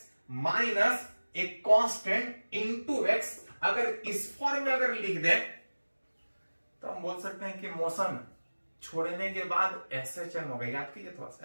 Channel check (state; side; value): inverted; both; correlation -1.00